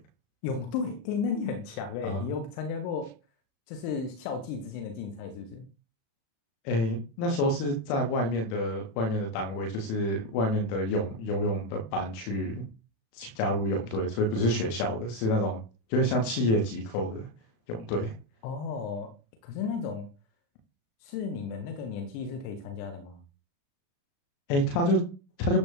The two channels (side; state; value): right; late; 36 ms